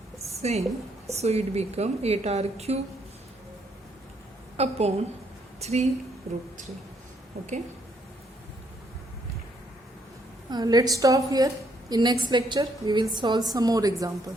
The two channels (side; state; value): both; normal; correlation 0.71